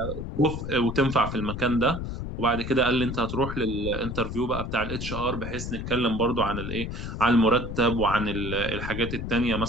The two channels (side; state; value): left; noise; rumble, 6 dB below the sound